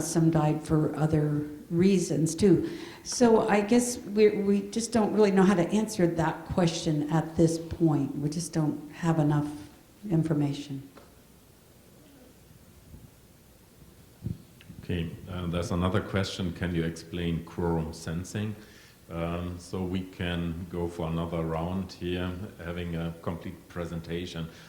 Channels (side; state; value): both; identical; correlation 1.00